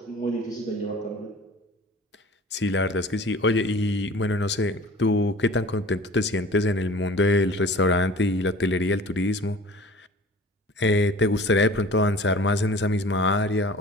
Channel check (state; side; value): normal; both; correlation 0.43